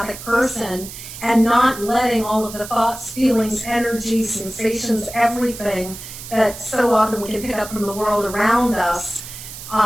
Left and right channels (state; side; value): noise; right; hiss, 12 dB below the sound